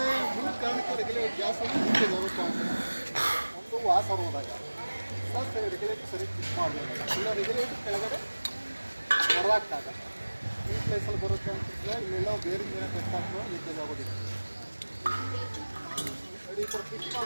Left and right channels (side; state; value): both; inverted; correlation -1.00